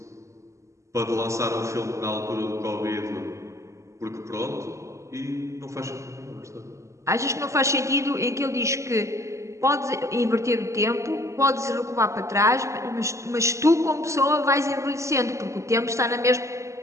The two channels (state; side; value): late; left; 0.14 ms